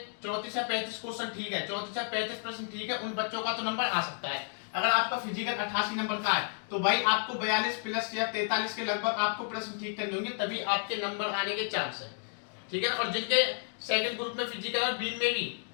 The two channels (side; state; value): right; silent; 57 dB below the other